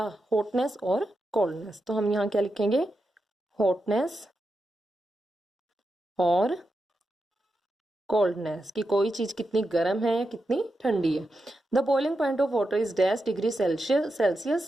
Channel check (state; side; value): normal; both; correlation 0.88